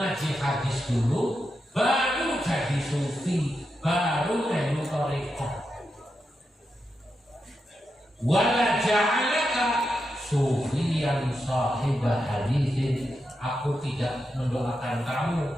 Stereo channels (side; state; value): both; normal; correlation 0.87